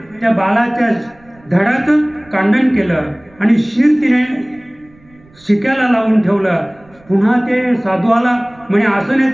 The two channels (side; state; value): right; noise; rumble, 29 dB below the sound